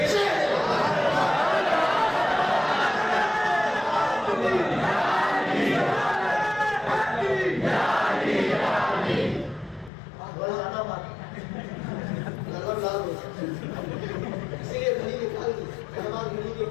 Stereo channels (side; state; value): right; drops out; at 9.9 s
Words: اسی لیے گھڑی نکال دی، ہماری گھڑی کی